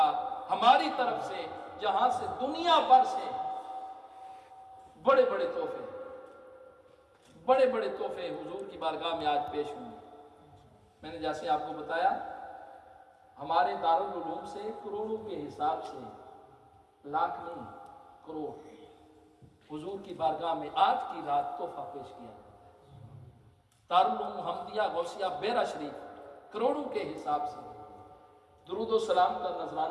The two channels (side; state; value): both; identical; correlation 1.00